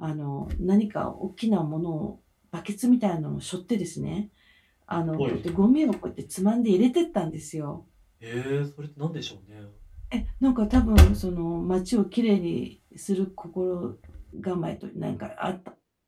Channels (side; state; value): both; identical; correlation 1.00